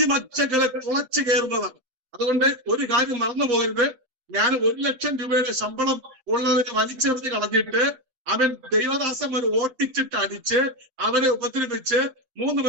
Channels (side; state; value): left; late; 7.7 ms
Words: തുളച്ചു കയറുന്നതാണ്. അതുകൊണ്ട് ഒരു കാര്യം മറന്നു പോകരുത്. ഞാൻ 1,00,000 രൂപയുടെ ശമ്പളം ഉള്ളവരെ വലിച്ചെറിഞ്ഞ് കളഞ്ഞിട്ട് ദൈവദാസന്മാരെ ഓട്ടിച്ചിട്ട് അടിച്ച് അവരെ ഉപദ്രവിച്ച് 3